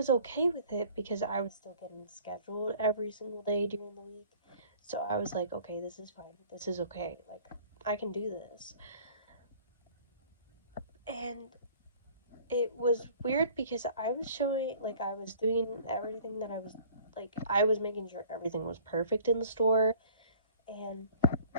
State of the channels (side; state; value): both; inverted; correlation -0.50